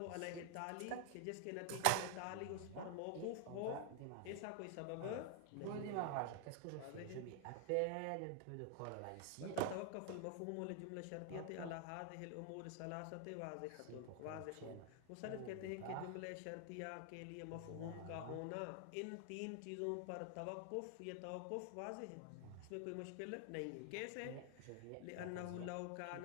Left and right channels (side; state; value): both; different; correlation 0.00